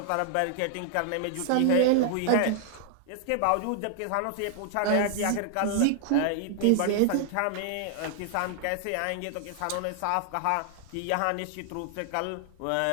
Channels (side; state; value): both; different; correlation 0.00